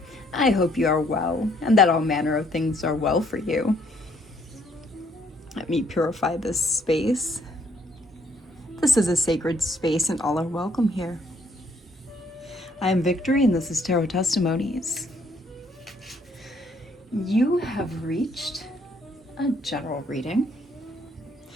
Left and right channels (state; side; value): normal; both; correlation 0.67